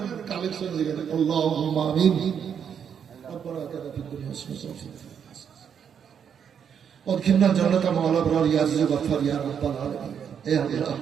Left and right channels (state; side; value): quieter; left; 7.8 dB